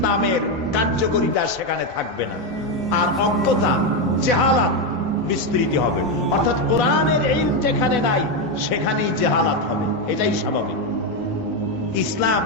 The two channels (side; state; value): both; normal; correlation 0.07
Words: কার্যকরিতা সেখানে থাকবে না। আর অজ্ঞতা, জেহালাত, বিস্তৃতি হবে। অর্থাৎ কোরআনের ইলম যেখানে নাই সেখানেই জাহালাত হবে, এটাই স্বাভাবিক। ইসলাম